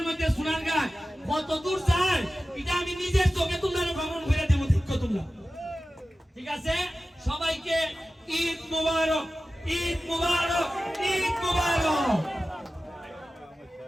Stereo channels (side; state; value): both; normal; correlation 0.95